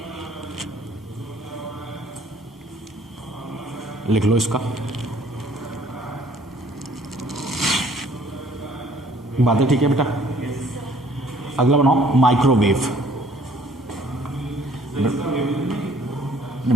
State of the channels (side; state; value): both; normal; correlation 0.58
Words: लिख लो इसका। बातें ठीक है बेटा। अगला बनाओ माइक्रोवेव। नहीं